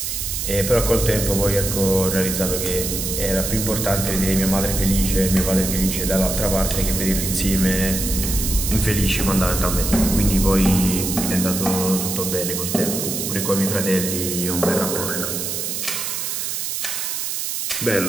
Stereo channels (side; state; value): right; noise; hiss, 3 dB below the sound